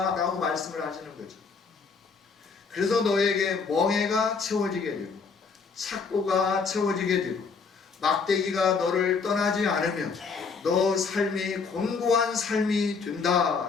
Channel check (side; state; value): right; quieter; 5.1 dB